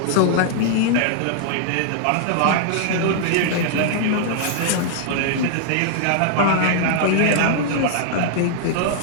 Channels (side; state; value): both; different; correlation -0.01